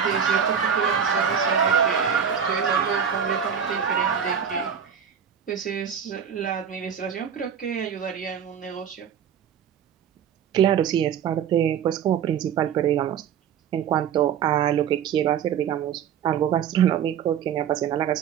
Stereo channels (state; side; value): quieter; left; 8.1 dB